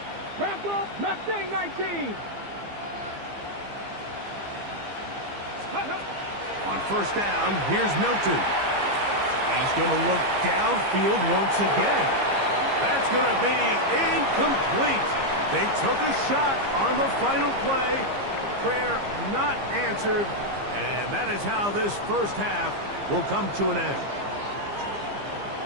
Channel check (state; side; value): late; left; 15 ms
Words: Broncos, Mustang 19. On first down, here's Milton. He's going to look downfield once again. That's going to be incomplete. They took a shot on the final play. Prayer not answered. And that is how this first half will come to an end.